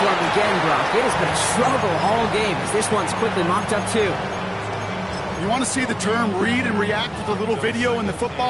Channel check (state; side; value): identical; both; correlation 1.00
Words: him again, Brock. It has been a struggle all game as this one's quickly mocked up, too. You want to see the term read and react with a little video in the